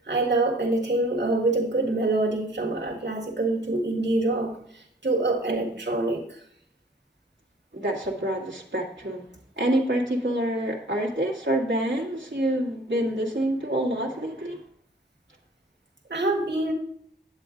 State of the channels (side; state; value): both; normal; correlation 0.51